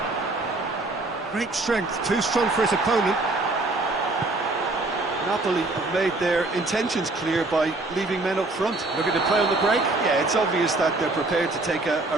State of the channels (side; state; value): left; quieter; 3.0 dB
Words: Great strength, too strong for his opponent. Napoli have made their intentions clear by leaving men up front. Looking to play on the break. Yeah, it's obvious that they're prepared to take